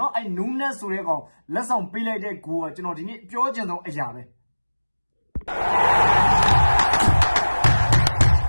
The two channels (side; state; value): both; inverted; correlation -1.00